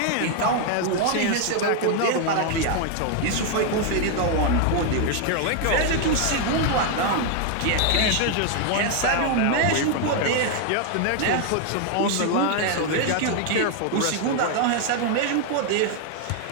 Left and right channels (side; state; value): both; different; correlation 0.00